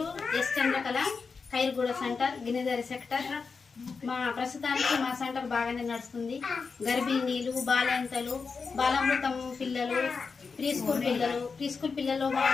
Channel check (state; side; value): quieter; right; 5.0 dB